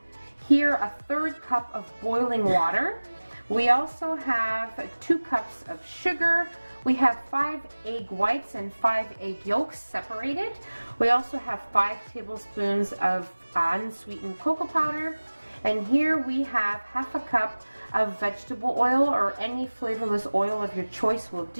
Here a 1/3 cup of boiling water. We also have 2 cups of sugar. We have 5 egg whites and 5 egg yolks separated. We also have 5 tablespoons of unsweetened cocoa powder. And here we have 1/2 cup of vegetable oil, or any flavorless oil of your choice will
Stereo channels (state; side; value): inverted; both; correlation -1.00